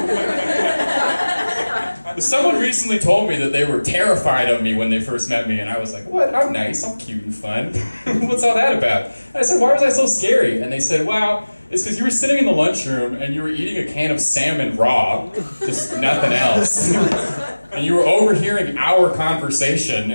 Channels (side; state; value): both; inverted; correlation -1.00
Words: Someone recently told me that they were terrified of me when they first met me, and I was like, what? I'm nice, I'm cute and fun. What's all that about? And I said, why was I so scary? And they said, well, it's because you were sitting in the lunchroom and you were eating a can of salmon raw, just nothing else. And you were overhearing our conversation,